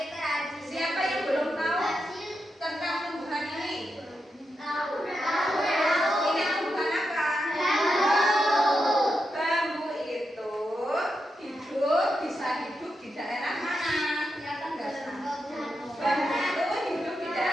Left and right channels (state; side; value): normal; both; correlation 0.86